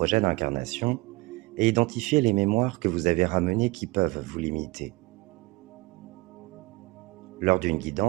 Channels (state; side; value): quieter; left; 23.2 dB